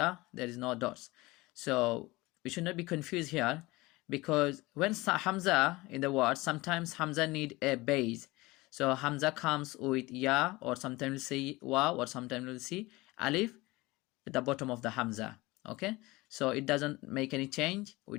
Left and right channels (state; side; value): quieter; right; 21.4 dB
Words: there is no dots. So we should not be confused here, because when hamza in the word, sometimes hamza need a base. So hamza comes with ya, or sometimes we'll see wa, or sometimes we'll see alif at the bottom of the hamza. Okay, so it doesn't make any change. We